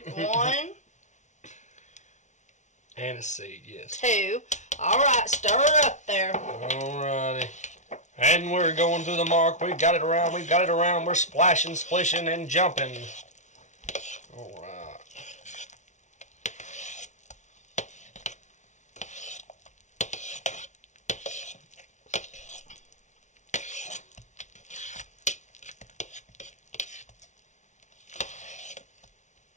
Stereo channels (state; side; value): late; right; 0.35 ms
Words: 1, Anise seed, yes. 2. All right, stir it up there. Alrighty. And we're going to the mark. We've got it around. We've got it around. We're splashing, splishing, and jumping. Alright.